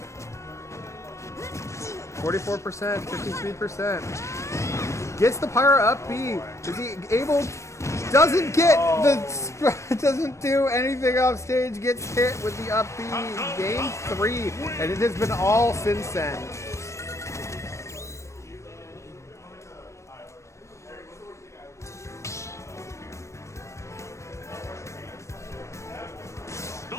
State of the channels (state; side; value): late; right; 0.14 ms